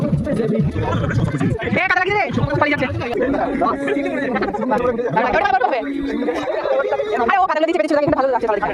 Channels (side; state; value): both; identical; correlation 1.00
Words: কাটা লাগছে রে পালিয়ে যাচ্ছে আরে ও কাটা দিচ্ছে পেছনে চলে কিন্তু ভালো লাগছে